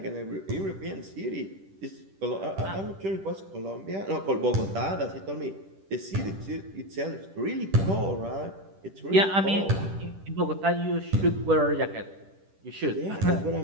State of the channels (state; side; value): late; left; 10 ms